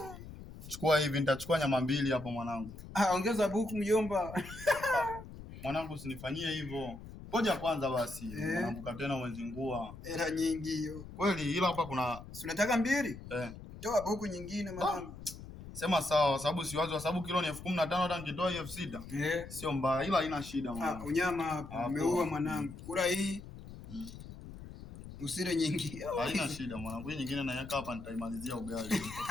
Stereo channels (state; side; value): noise; left; rumble, 13 dB below the sound